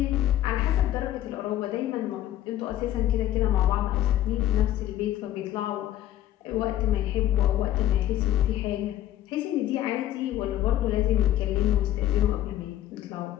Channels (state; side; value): quieter; right; 12.9 dB